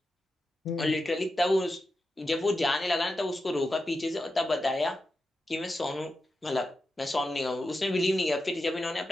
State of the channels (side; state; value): both; normal; correlation 0.90